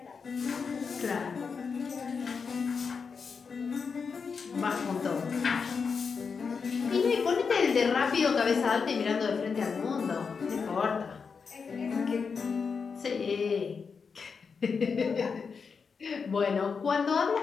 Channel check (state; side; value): quieter; right; 5.5 dB